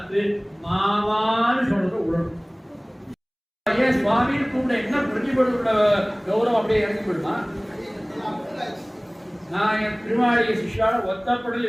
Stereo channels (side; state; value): both; identical; correlation 1.00